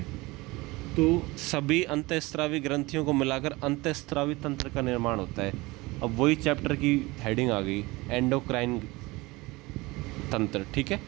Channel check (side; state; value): left; quieter; 22.2 dB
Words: तो सभी अंतःस्रावी ग्रंथियों को मिलाकर अंतःस्रावी तंत्र का निर्माण होता है। अब वही चैप्टर की हेडिंग आ गई, एंडोक्राइन तंत्र, ठीक है,